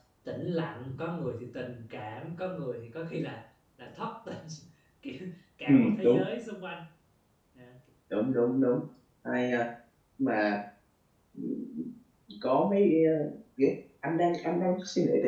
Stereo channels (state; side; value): identical; both; correlation 1.00